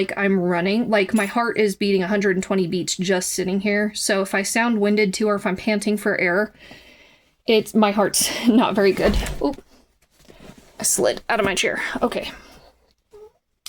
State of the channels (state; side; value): identical; both; correlation 1.00